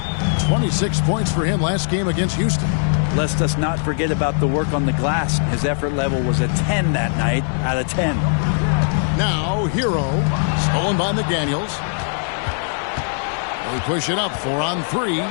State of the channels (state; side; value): silent; right; digital silence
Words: 26 points for him last game against Houston. Lest us not forget about the work on the glass. His effort level was a 10 that night out of 10. Now, Hero. Stolen by McDaniels. They push it up 4-on-3.